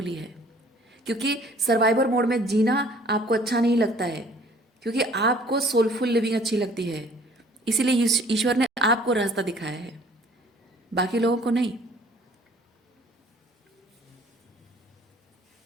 है, क्योंकि सर्वाइवर मोड में जीना आपको अच्छा नहीं लगता है, क्योंकि आपको सोलफुल लिविंग अच्छी लगती है। इसीलिए ईश्वर ने आपको रास्ता दिखाया है, बाकी लोगों को नहीं।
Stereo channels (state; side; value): normal; both; correlation 0.55